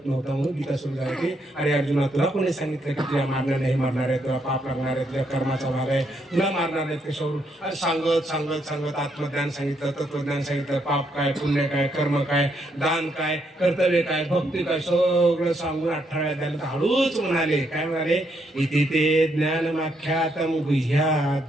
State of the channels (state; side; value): normal; both; correlation 0.76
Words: नव्हता म्हणून गीता सुरू झाली होती. अरे अर्जुना, तुला कोणी सांगितलं की तुला मारणार नाही, मारणार आहे, तुला पाप लागणार आहे, तुझ्या कर्माचा भाग आहे, तुला मारणार आहेत कशावरून? सांगत सांगत सांगत आत्मज्ञान सांगितलं, तत्वज्ञान सांगितलं, पाप काय, पुण्य काय, कर्म काय, दान काय, कर्तव्य काय, भक्ती काय, सगळं सांगून 18व्या अध्यायाला हळूच म्हणाले. काय म्हणाले? इति ते ज्ञानमाख्यातम